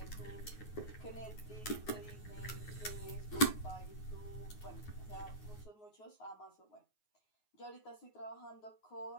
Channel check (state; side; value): late; right; 9.5 ms